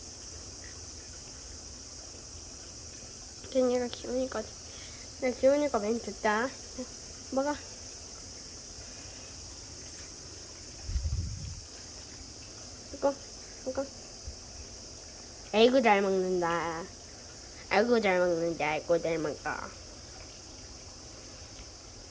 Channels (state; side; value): identical; both; correlation 1.00